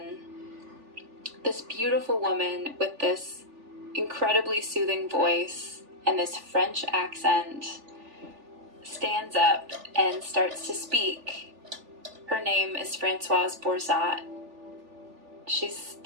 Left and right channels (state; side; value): late; left; 3.4 ms